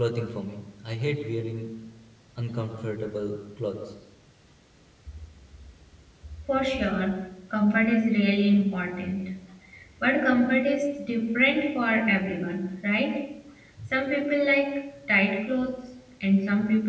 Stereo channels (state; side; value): identical; both; correlation 1.00